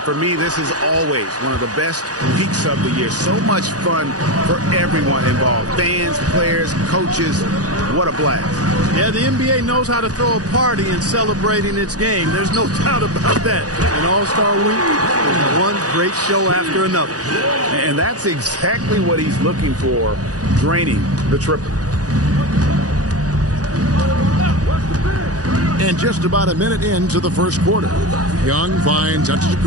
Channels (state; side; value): late; left; 0.67 ms